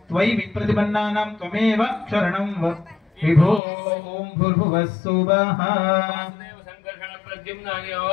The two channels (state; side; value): drops out; right; at 3.6 s